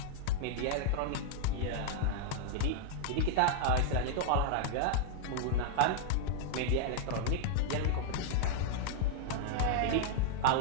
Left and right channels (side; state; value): both; different; correlation 0.00